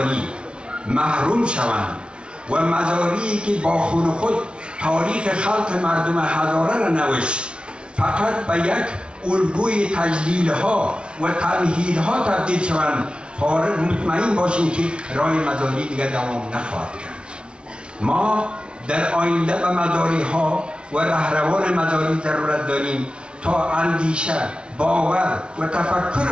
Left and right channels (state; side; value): late; left; 0.057 ms